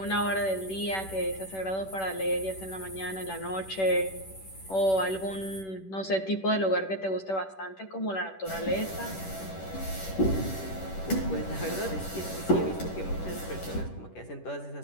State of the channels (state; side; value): late; right; 10 ms